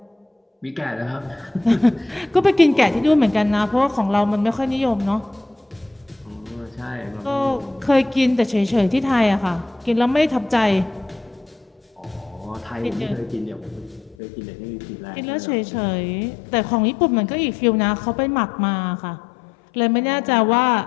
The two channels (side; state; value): right; drops out; at 14.2 s